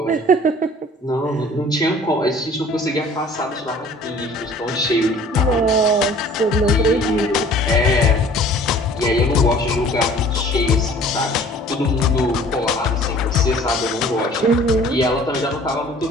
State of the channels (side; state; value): both; normal; correlation 0.50